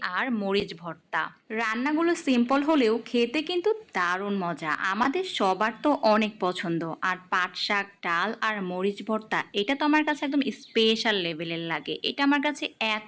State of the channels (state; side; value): identical; both; correlation 1.00